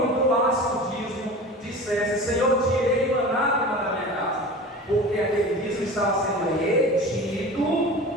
doasse o dízimo, dissesse: Senhor, tirei o anátema da minha casa, porque aquele dízimo estava sendo retido,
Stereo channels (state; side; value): normal; both; correlation 0.35